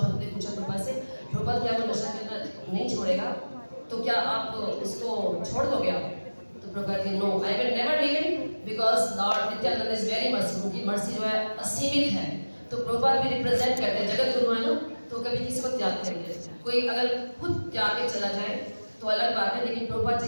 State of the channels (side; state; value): both; inverted; correlation -1.00